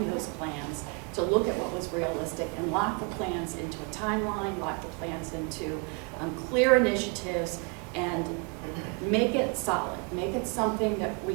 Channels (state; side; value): quieter; left; 34.0 dB